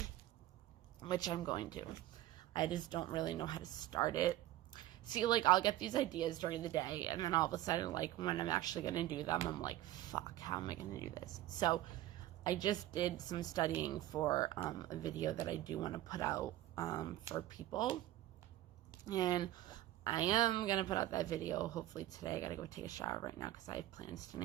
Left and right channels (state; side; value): quieter; left; 14.6 dB